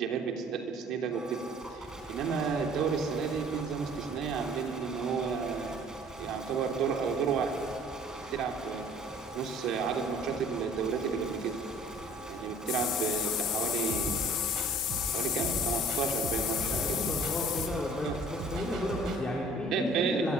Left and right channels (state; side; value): normal; both; correlation 0.52